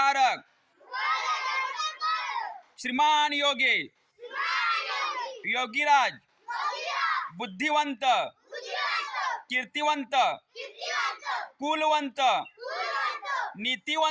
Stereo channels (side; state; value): both; identical; correlation 1.00